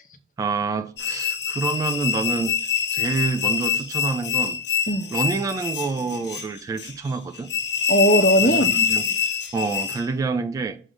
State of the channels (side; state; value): both; normal; correlation 0.08